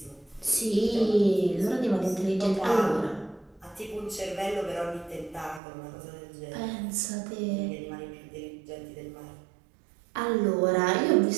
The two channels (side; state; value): left; drops out; at 5.6 s